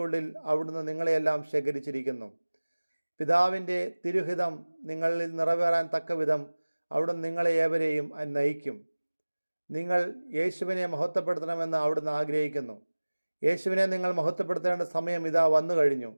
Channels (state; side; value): inverted; both; correlation -1.00